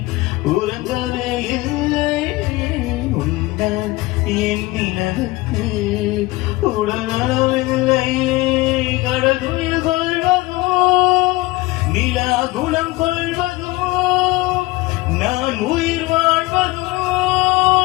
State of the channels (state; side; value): quieter; right; 20.6 dB